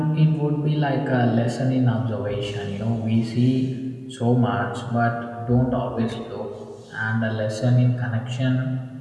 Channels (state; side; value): identical; both; correlation 1.00